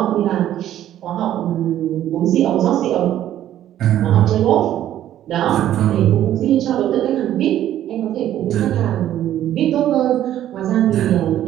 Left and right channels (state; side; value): quieter; left; 12.0 dB